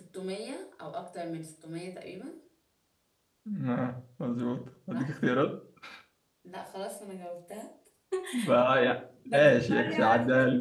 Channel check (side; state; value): both; identical; correlation 1.00